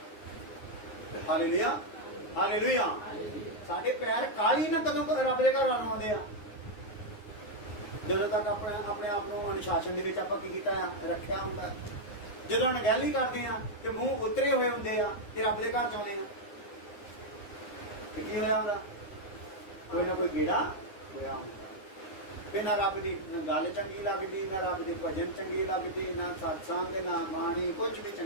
ਹਾਲੇਲੂਇਆ। ਹਾਲੇਲੂਇਆ। ਸਾਡੇ ਪੈਰ ਕਾਲੀ ਨਾ ਕਦੋਂ ਰੱਬ ਦੇ ਘਰ ਆਉਂਦੇ ਆ? ਜਦੋਂ ਤੱਕ ਆਪਣੇ ਆਪ ਨੂੰ ਅਨੁਸ਼ਾਸਨ ਦੇ ਵਿੱਚ ਆਪਾਂ ਕੀ ਕੀਤਾ ਆ? ਰੱਖਿਆ ਹੁੰਦਾ। ਜਦੋਂ ਅਣਗਹਿਲੀ ਕਰਦੇ ਆ ਤੇ ਮੂੰਹ ਉਤਰੇ ਹੋਏ ਹੁੰਦੇ ਆ ਤੇ ਰੱਬ ਦੇ ਘਰ ਜਾਂਦੇ ਆ, ਕੀ ਹੋਇਆ ਹੁੰਦਾ? ਕੋਈ ਨਾ ਕੋਈ ਗੇੜਾ ਹੋਇਆ ਹੁੰਦਾ। ਫਿਰ ਨਾ ਰੱਬ ਦੀ ਗੱਲ ਚੰਗੀ ਲੱਗਦੀ, ਨਾ ਰੱਬ ਦੇ ਭਜਨ ਚੰਗੇ ਲੱਗਦੇ, ਨਾ ਸਤਸੰਗ, ਨਾ ਬਾਣੀ, ਕੁਝ ਵੀ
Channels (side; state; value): right; late; 9.6 ms